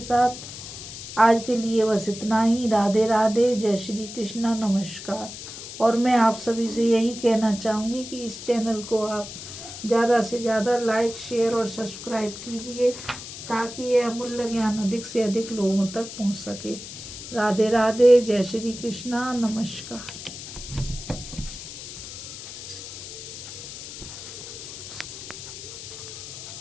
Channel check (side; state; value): left; noise; hiss, 11 dB below the sound